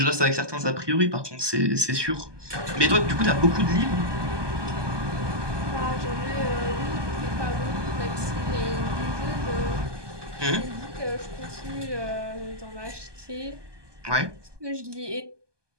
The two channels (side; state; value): left; late; 1.2 ms